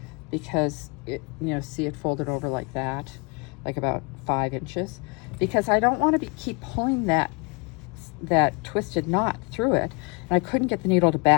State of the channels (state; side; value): quieter; right; 31.0 dB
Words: because it, you know, see it folded over like that, like about 5 inches, because I don't want to keep pulling that twisted knot through it, and I couldn't get the needle to